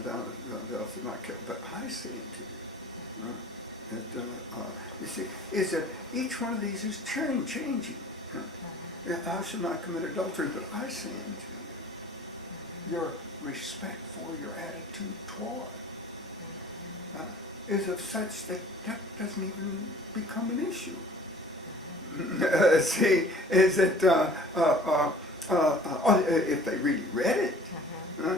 thou shalt not kill. But I say unto you, right? That, you see, is that each one of these is changing. Thou shalt not commit adultery, but I say unto you, your respect for your attitude toward is of such that doesn't even become an issue. See, is that if they really read it,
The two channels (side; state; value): both; normal; correlation 0.48